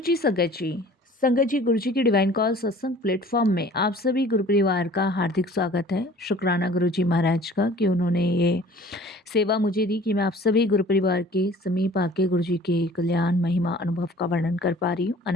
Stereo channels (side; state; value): both; normal; correlation 0.48